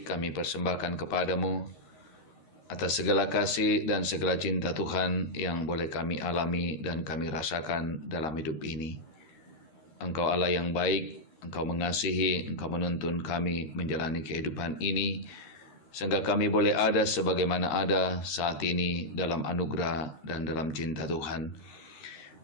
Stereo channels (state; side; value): late; right; 13 ms